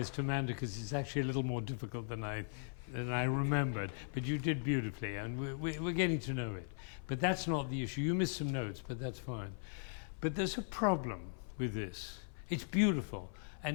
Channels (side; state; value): right; silent; 52 dB below the other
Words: to Amanda because it's actually a little more difficult than I remembered. But you did beautifully, and we're getting to know it. But that's not the issue. You missed some notes, but that's fine. But there's a problem with this. It's beautiful,